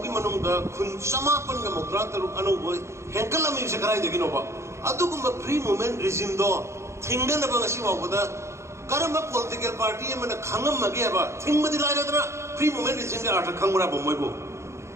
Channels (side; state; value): left; late; 0.13 ms